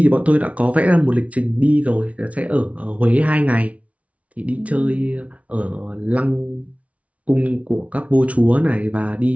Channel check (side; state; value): left; late; 0.066 ms